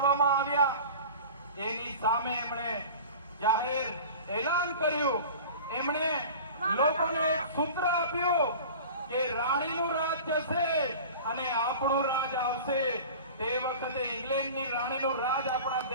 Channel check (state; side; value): inverted; both; correlation -0.38